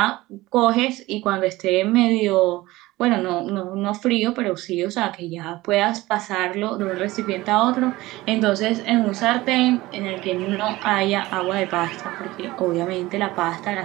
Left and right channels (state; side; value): quieter; left; 18.8 dB